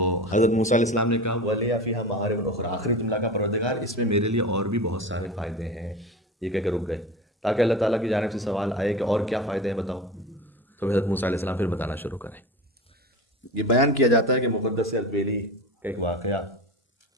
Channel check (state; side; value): normal; both; correlation 0.30